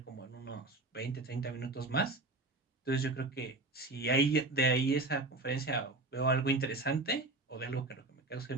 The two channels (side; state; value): left; quieter; 3.0 dB